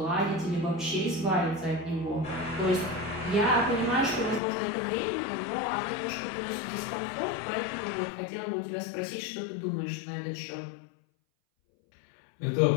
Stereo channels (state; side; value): drops out; right; at 4.4 s